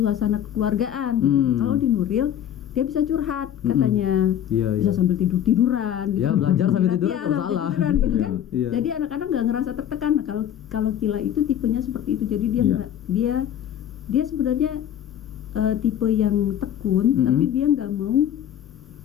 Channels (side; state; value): right; quieter; 10.3 dB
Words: kekeluargaan. Gitu. Kalau di Nuril dia bisa curhat katanya, bisa sambil tiduran. Gitu. Ya belajar sambil tidur Iya, kalau sambil salah. tiduran gitu kan. Iya. Jadi anak-anak nggak ngerasa tertekan. Nah, kalau Kila itu tipenya seperti itu. Jadi dia sebenarnya tipe yang tekun, tapi dia nggak mau.